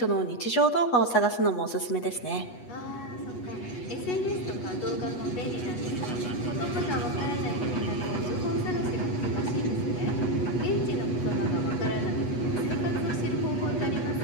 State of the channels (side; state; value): right; late; 8.2 ms